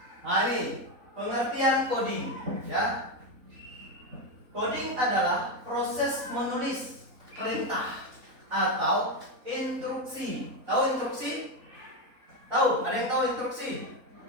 Nah ini pengertian coding, ya. Coding adalah proses menulis perintah atau instruksi. Tahu instruksi? Tahu? Ada yang tahu instruksi?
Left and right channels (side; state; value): left; late; 3.8 ms